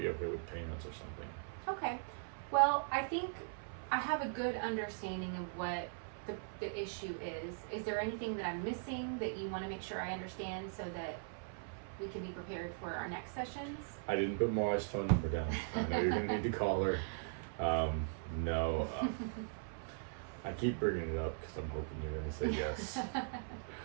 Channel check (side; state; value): left; silent; 51 dB below the other